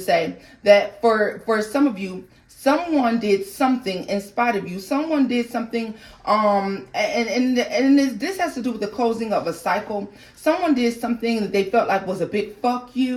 that for some of you, someone did something in spite of you. Someone did something, and this has to do with the closing of a cycle. Someone did something that they felt like was a big fuck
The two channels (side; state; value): both; identical; correlation 1.00